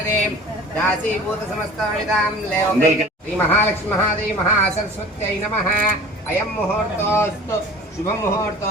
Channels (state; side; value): normal; both; correlation 0.42